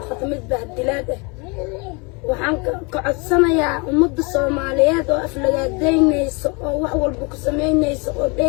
بهالدلاده وحن كعصنا يا أمد الصوماليات وأفلقات دينيس وحول بك سمينيس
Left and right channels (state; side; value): quieter; right; 30.3 dB